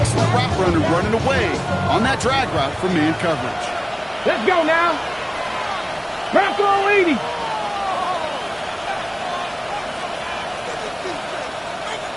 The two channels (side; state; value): both; identical; correlation 1.00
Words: route runner running away on that drag route from man coverage. Let's go now. Bronco 80.